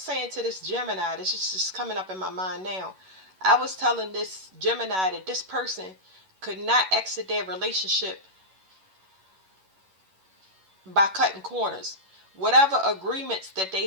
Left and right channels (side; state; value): left; late; 11 ms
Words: to this Gemini. This is just coming up in my mind now. I was telling this Gemini that this person could not exit their relationship by cutting corners. Whatever agreements that they